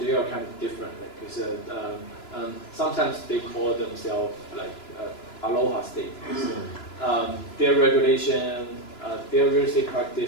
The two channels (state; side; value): late; right; 2.9 ms